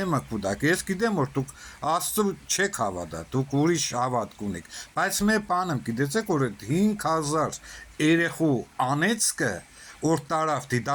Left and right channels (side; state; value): both; identical; correlation 1.00